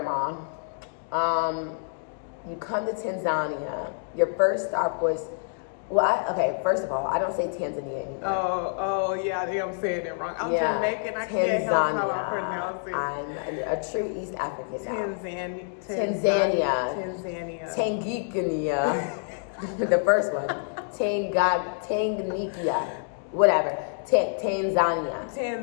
You come to Tanzania. Your first stop was, first of all, I don't say Tanzania anymore. Oh, yeah, I think I'm saying it wrong. I'm Jamaican. I can't help how I pronounce it. I'm a true East African now. Tanzania. Tanganyika. The first one. Tanganyika. Whatever. Tanzania.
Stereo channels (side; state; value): right; silent; digital silence